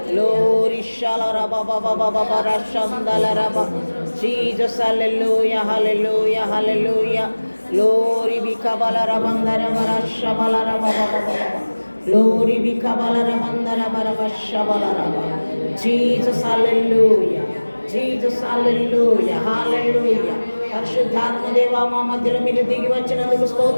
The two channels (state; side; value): inverted; both; correlation -1.00